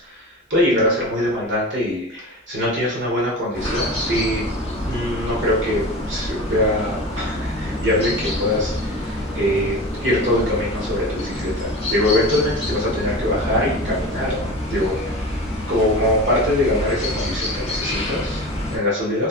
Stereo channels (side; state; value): both; normal; correlation 0.32